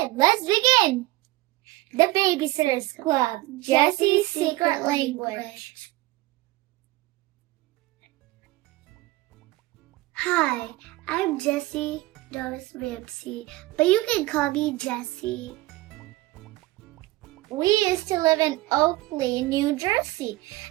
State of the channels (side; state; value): left; quieter; 19.1 dB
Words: let's begin. The Babysitter's Club, Jessi's Secret Language. Hi, I'm Jessi Doris Ramsey, but you can call me Jessi. We used to live in Oakley, New Jersey.